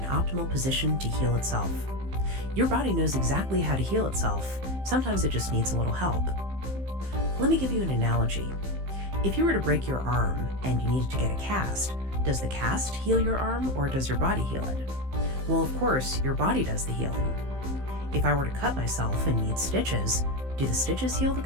optimal position to heal itself. Your body knows exactly how to heal itself. Sometimes it just needs a little help. Let me give you an analogy. If you were to break your arm and you needed to get a cast, does the cast heal your arm or does your body heal it? Well, of course, your body does the healing. If I were to cut myself and need stitches, do the stitches heal the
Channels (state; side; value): late; left; 15 ms